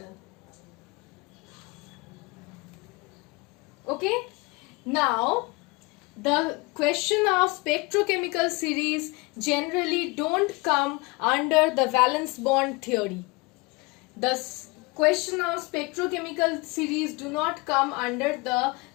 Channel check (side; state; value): right; quieter; 25.9 dB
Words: Okay, now the question of spectrochemical series generally don't come under the valence bond theory. The question of spectrochemical series do not come under the